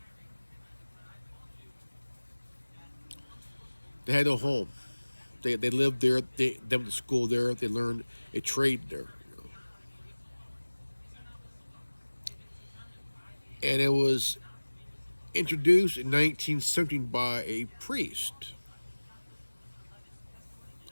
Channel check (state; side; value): inverted; both; correlation -1.00